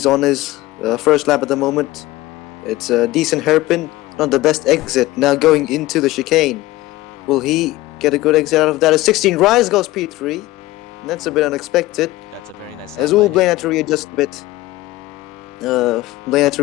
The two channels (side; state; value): right; quieter; 17.9 dB